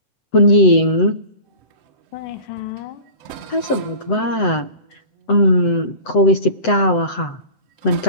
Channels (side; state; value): right; late; 7.9 ms